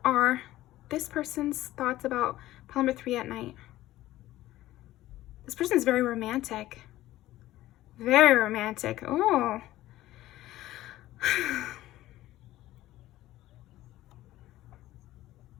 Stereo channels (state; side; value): quieter; right; 15.5 dB